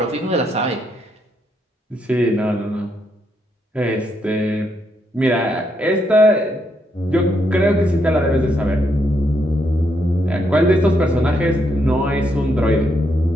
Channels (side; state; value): both; normal; correlation 0.77